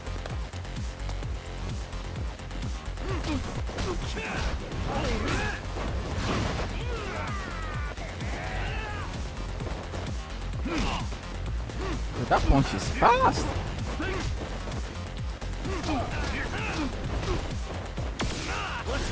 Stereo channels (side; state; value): both; identical; correlation 1.00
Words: Dude, that punch is fast.